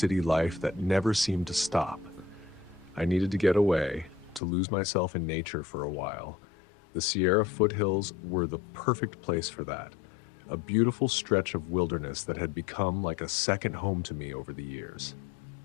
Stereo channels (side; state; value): right; drops out; at 4.4 s